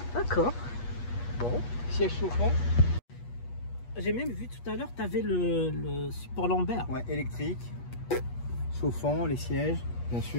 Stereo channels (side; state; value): right; late; 8.3 ms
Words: D'accord. Bon. Siège chauffant. J'ai même vu tout à l'heure, tu avais le support lombaire. Ouais, électrique. Chauffant, les sièges, bien